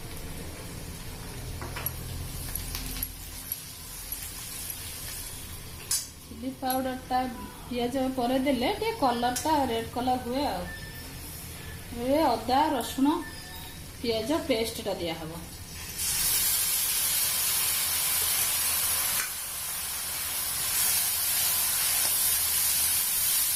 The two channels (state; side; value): identical; both; correlation 1.00